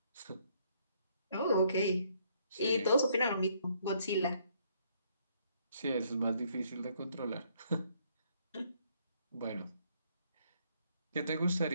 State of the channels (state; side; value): inverted; both; correlation -0.68